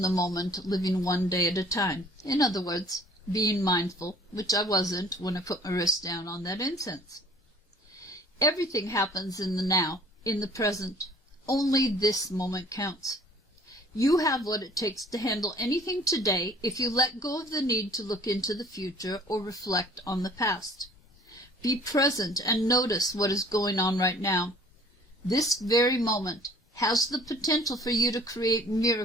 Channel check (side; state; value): both; normal; correlation 0.53